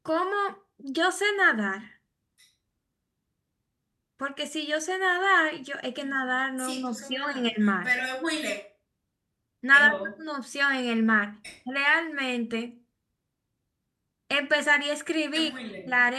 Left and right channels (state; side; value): identical; both; correlation 1.00